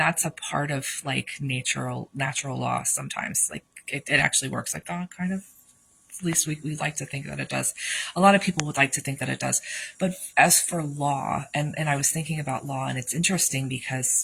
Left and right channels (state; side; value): identical; both; correlation 1.00